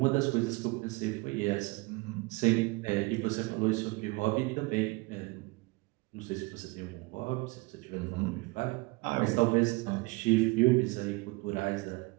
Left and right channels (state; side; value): quieter; left; 25.4 dB